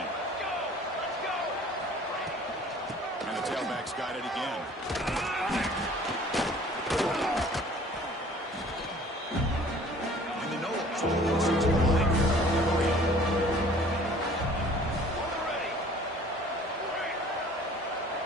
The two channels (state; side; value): normal; both; correlation 0.51